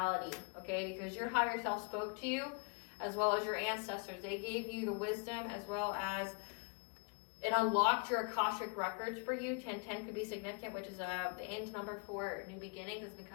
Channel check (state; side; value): quieter; right; 34.3 dB